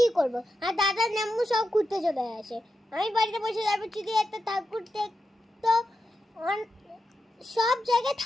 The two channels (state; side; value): normal; both; correlation 0.89